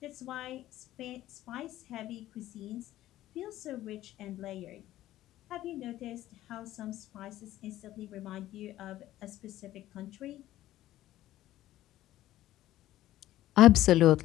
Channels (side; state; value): right; quieter; 14.4 dB